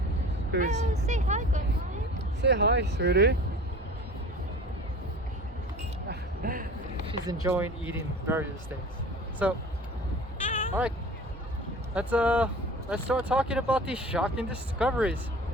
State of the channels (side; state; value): both; normal; correlation 0.40